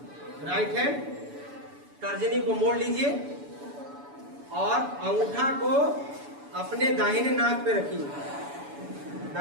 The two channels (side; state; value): left; late; 7.0 ms